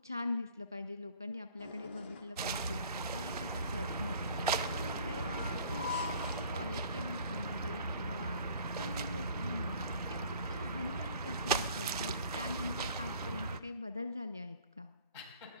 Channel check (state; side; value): inverted; both; correlation -0.51